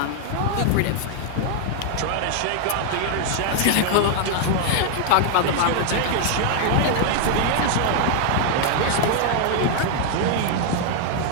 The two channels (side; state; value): both; different; correlation 0.00